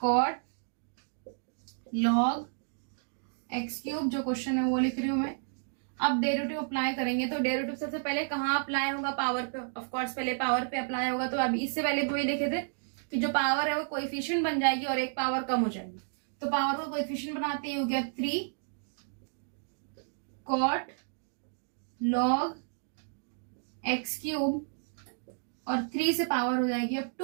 cot log x³ जो क्वेश्चन है वो लिख रही हूं मैं। अब डेरिवेटिव अप्लाई करेंगे, तो डेरिवेटिव सबसे पहले कहाँ अप्लाई होगा, पावर पे, ऑफ कोर्स पहले पावर पे अप्लाई होगा। तो अभी इससे पहले वही लिखे थे कि जो पावर है वो कोएफिशिएंट बन जाएगी और एक पावर कम हो जाएगी। तो पावर को कोएफिशिएंट बनाते ही हो गया 3 cot log x³ और 3 से पावर हो जाएगी अब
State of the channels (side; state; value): left; silent; digital silence